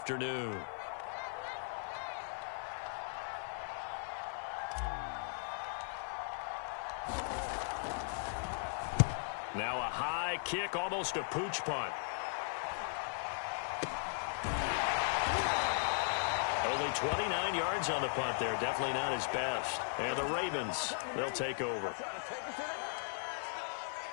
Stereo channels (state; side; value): silent; right; 53 dB below the other